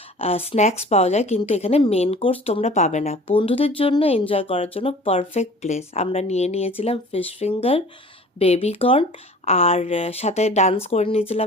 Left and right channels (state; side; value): normal; both; correlation 0.45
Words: স্ন্যাক্স পাওয়া যায়, কিন্তু এখানে মেন কোর্স তোমরা পাবে না। বন্ধুদের জন্য এনজয় করার জন্য পারফেক্ট প্লেস। আমরা নিয়েছিলাম ফিশ ফিঙ্গার, বেবি কর্ন, আর সাথে ডান্স করে